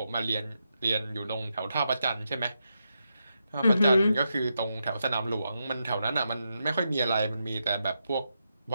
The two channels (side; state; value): both; inverted; correlation -0.85